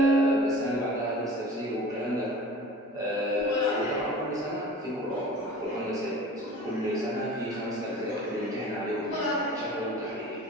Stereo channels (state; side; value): normal; both; correlation 0.40